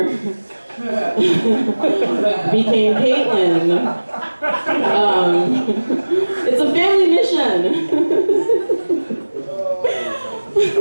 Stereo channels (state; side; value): inverted; both; correlation -1.00